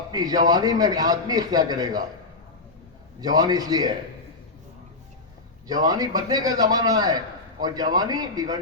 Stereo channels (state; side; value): quieter; right; 3.4 dB